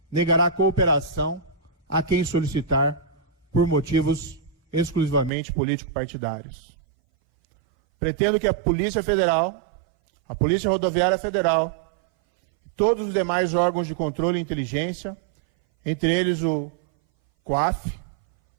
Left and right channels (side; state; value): left; drops out; at 5.3 s